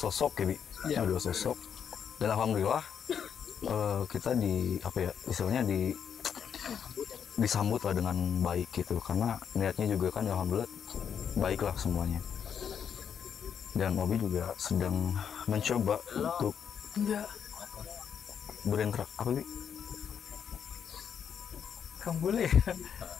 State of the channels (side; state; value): right; quieter; 7.8 dB